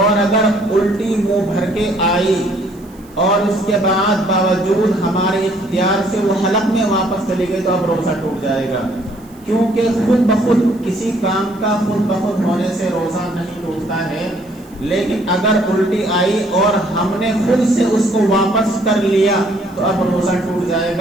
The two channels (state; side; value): noise; right; hiss, 28 dB below the sound